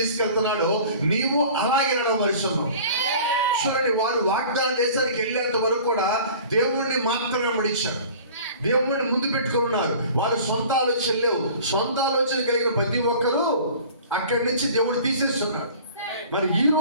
నీవు అలాగే నడవమరుస్తున్నావు. చూడండి, వారు వాగ్దాన దేశానికి వెళ్ళేంత వరకు కూడా దేవుణ్ణి మాత్రమే వెంబడించారు. దేవుణ్ణి ముందు పెట్టుకుని ఉన్నారు. వారు సొంత ఆలోచన లేవు. సొంత ఆలోచన కలిగిన ప్రతి ఒక్కరూ అక్కడి నుంచి దేవుడు తీసేస్తున్నాడు. మరి ఈ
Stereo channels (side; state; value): both; inverted; correlation -0.45